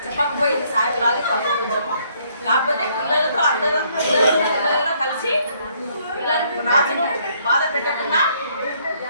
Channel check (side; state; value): both; inverted; correlation -0.67